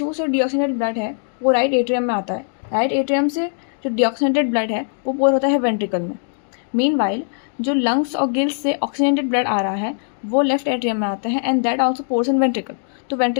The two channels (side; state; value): right; silent; digital silence